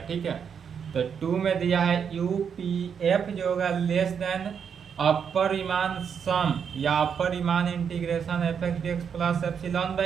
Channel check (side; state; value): left; quieter; 7.2 dB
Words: ठीक है। तो 2 में दिया है UPF जो होगा less than upper Riemann sum या upper Riemann integration fx/dx plus epsilon